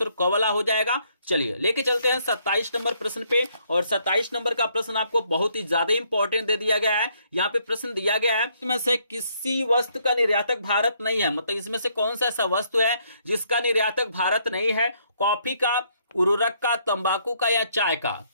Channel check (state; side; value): inverted; both; correlation -0.70